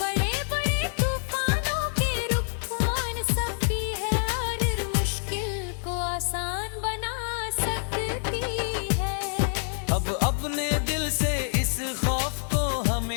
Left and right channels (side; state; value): right; silent; 60 dB below the other